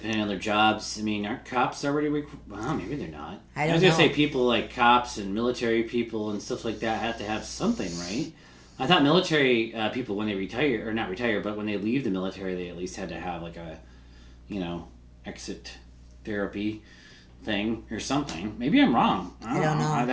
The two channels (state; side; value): identical; both; correlation 1.00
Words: on their jobs. I mean, aren't cops already required? Well, maybe they're not. I was going to say people like cops and military people and stuff like that have to have something, right? I thought military people, when they retire, or not retire, but when they leave the military, they at least had to have like a, exit therapy thing or something. Maybe I'm wrong. I don't know.